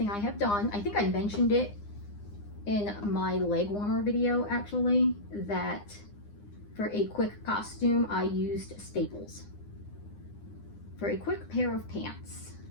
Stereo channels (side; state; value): right; late; 9.8 ms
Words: I have done. I think I mentioned it in my leg warmer video, actually, that for a quick costume, I used Staples for a quick pair of pants.